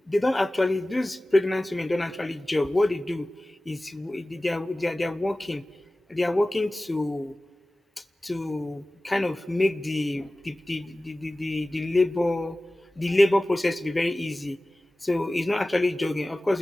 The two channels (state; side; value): normal; both; correlation 0.97